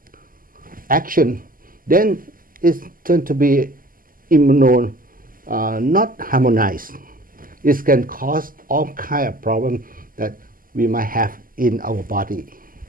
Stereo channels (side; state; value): left; late; 0.41 ms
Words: action, then it's going to be immune not harmonized. It can cause all kind of problems that we might have in our body.